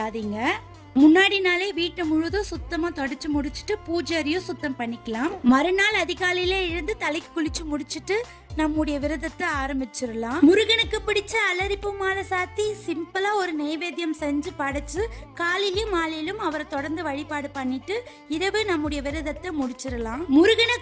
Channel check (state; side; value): identical; both; correlation 1.00